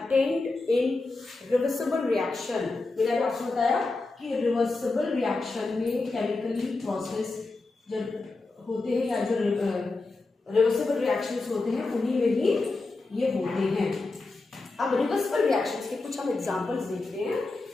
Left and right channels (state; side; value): quieter; right; 3.4 dB